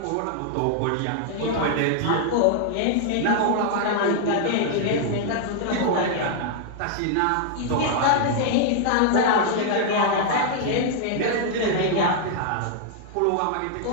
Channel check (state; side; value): different; both; correlation -0.01